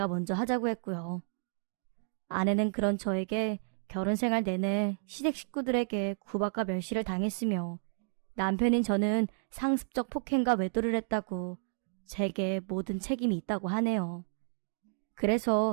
먼저 하자고 했고요. 아내는 그런 저에게 결혼 생활 내내 시댁 식구들에게 구박과 멸시를 당했으며 남편인 저는 상습적 폭행과 외도를 했다고 제게 모든 책임이 있다고 하네요.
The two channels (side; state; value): left; silent; digital silence